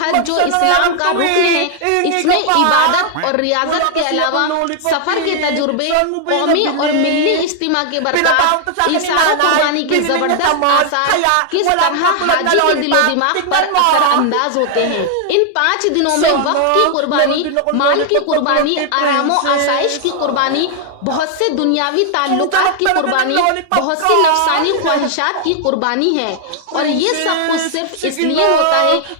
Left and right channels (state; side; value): different; both; correlation 0.00